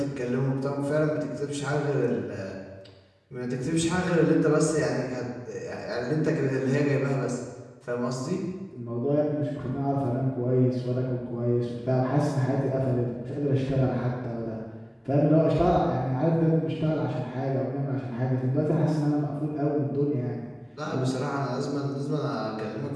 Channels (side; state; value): both; identical; correlation 1.00